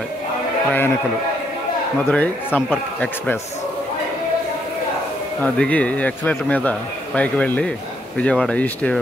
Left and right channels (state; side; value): normal; both; correlation 0.74